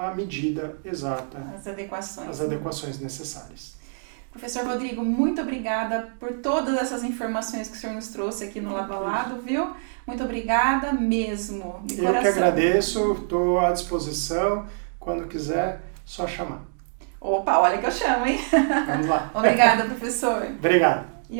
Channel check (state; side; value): silent; left; digital silence